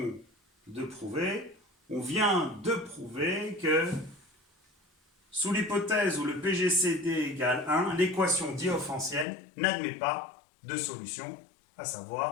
de prouver? On vient de prouver que sous l'hypothèse où le PGCD égale 1, l'équation différéntielle n'admet pas de solution, à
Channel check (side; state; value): right; drops out; at 9.2 s